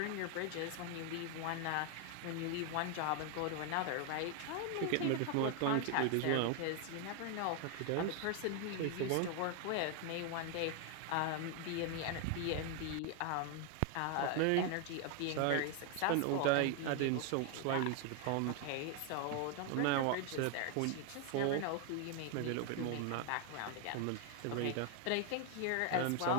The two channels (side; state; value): both; different; correlation 0.01